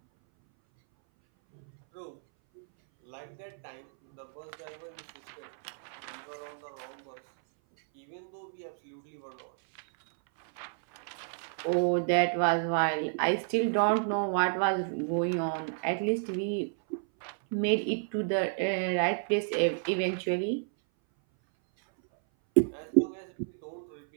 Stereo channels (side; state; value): left; silent; 57 dB below the other